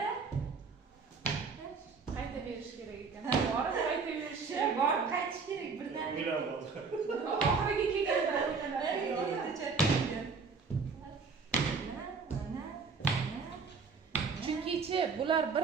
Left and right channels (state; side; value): quieter; left; 4.9 dB